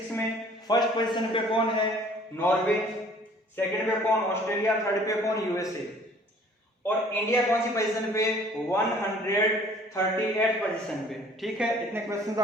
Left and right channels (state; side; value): normal; both; correlation 0.54